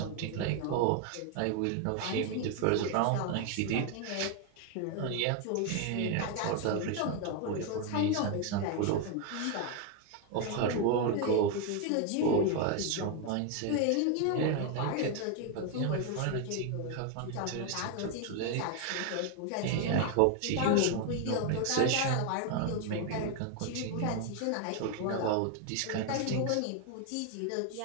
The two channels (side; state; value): both; different; correlation 0.01